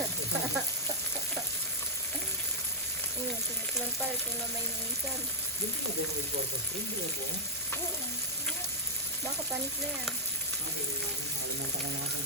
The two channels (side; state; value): both; normal; correlation -0.10